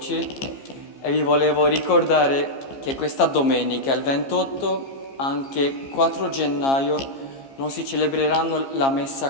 e vi volevo ricordare che questa domenica, il 28, anche 4 gennaio, non si celebreranno la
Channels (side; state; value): right; late; 15 ms